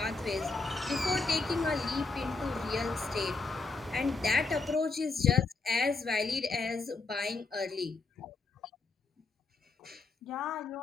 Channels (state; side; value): quieter; right; 3.9 dB